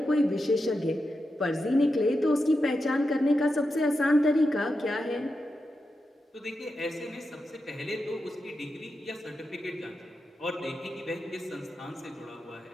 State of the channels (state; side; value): normal; both; correlation 0.88